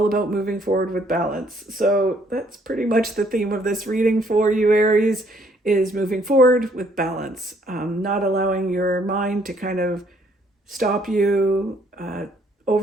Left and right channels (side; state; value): both; normal; correlation 0.66